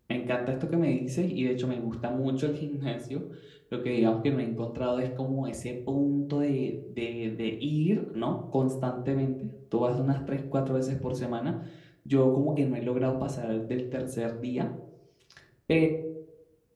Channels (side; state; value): both; identical; correlation 1.00